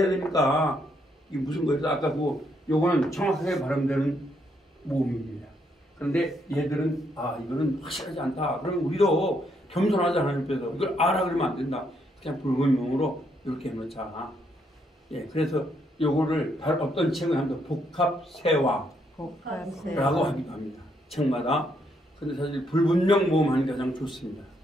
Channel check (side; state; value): both; normal; correlation 0.74